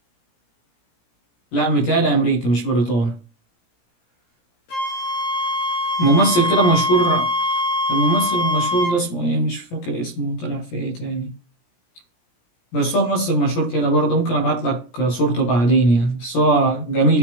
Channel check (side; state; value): right; late; 17 ms